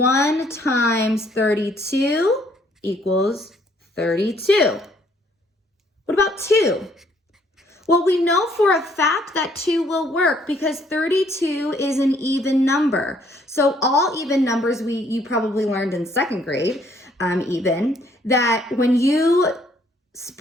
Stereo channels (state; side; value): normal; both; correlation 0.65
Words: times 32 equals 32. What about 2? Well, we know for a fact that 2 will work because 32 is an even number. So all even numbers, you probably learned in 2nd grade, even, that when you